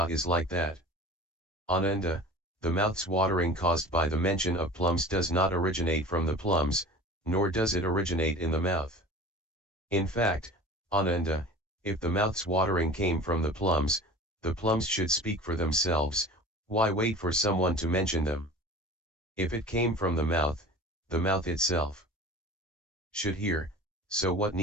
is like that. Ananda, the mouth's watering caused by the mention of plums does not originate from the plums, nor does it originate in the mouth. In fact, Ananda, if the mouth's watering came from the plums should speak for themselves, why wait for someone to mention them? If it came from the mouth itself should hear, so what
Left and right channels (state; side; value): normal; both; correlation 0.39